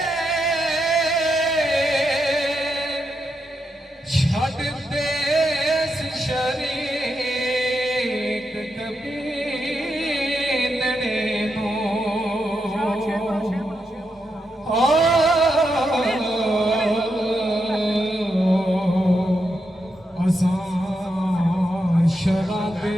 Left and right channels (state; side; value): normal; both; correlation 0.84